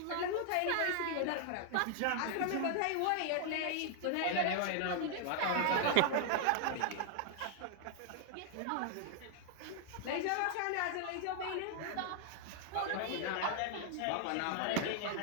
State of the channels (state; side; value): different; both; correlation 0.00